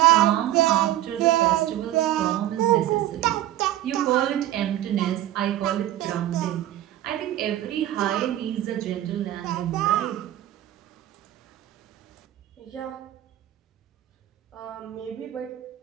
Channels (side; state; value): left; quieter; 13.6 dB